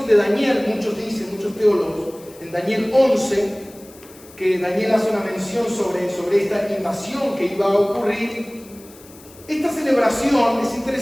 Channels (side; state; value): left; noise; hiss, 23 dB below the sound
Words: de Daniel, muchos dicen, muchos teólogos, en Daniel 11, que Daniel hace una mención sobre esta invasión que iba a ocurrir. Esta celebración es